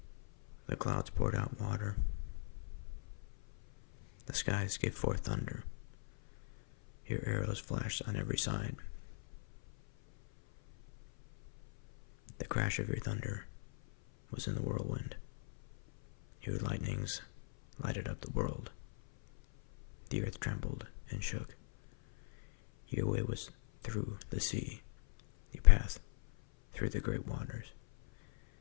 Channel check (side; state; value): right; silent; 52 dB below the other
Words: The clouds poured out water. The skies gave forth thunder. Your arrows flashed on every side. The crash of your thunder was in the whirlwind. Your lightnings lighted up the world. The earth trembled and shook. Your way was through the sea, your path through the great waters,